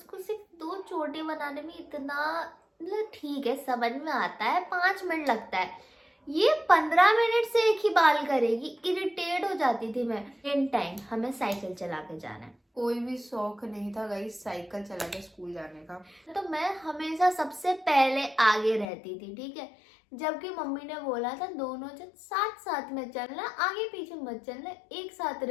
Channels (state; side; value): drops out; right; at 18.9 s